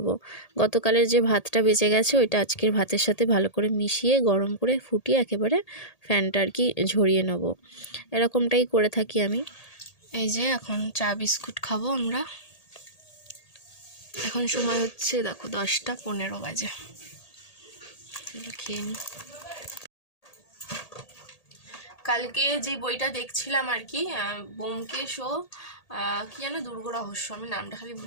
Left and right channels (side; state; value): right; late; 1.8 ms